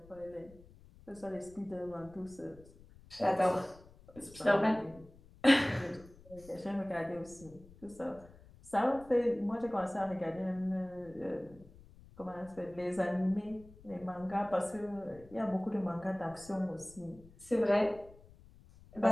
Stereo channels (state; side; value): noise; left; rumble, 22 dB below the sound